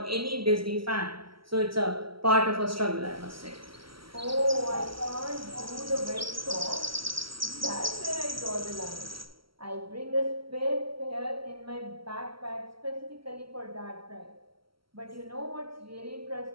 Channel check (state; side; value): late; left; 0.74 ms